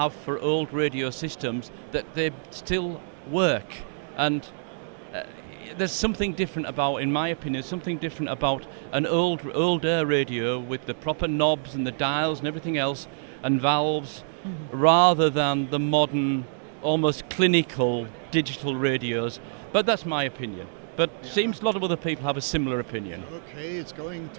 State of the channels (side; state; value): left; silent; digital silence